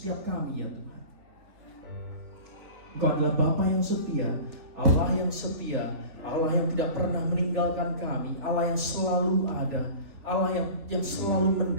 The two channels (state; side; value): late; left; 3.4 ms